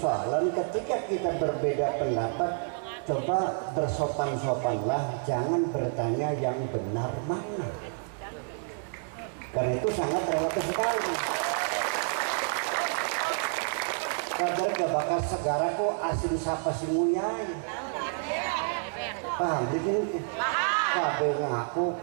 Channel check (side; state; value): left; silent; 58 dB below the other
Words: ketika kita berbeda pendapat. Coba bersopan-sopanlah, jangan bertanya yang benar mana, karena itu sangat relatif sekali. Kadang gak bakal segara kok asin sapa si muyai. Paham begini? Kabeh ngaku